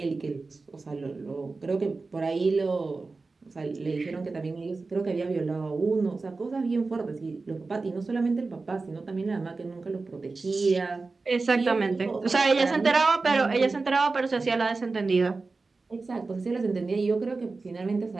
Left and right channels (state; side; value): quieter; left; 3.8 dB